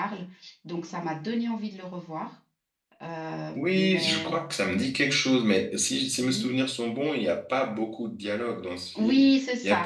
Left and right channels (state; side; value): identical; both; correlation 1.00